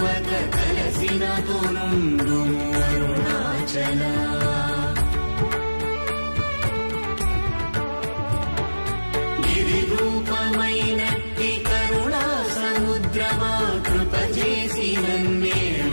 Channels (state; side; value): inverted; both; correlation -1.00